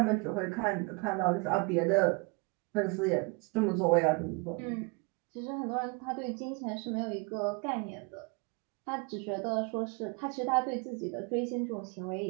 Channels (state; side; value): quieter; left; 30.6 dB